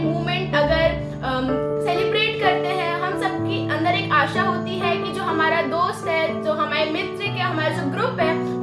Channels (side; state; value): both; identical; correlation 1.00